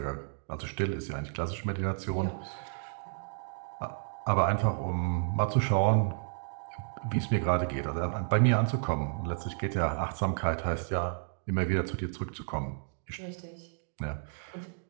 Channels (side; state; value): left; silent; digital silence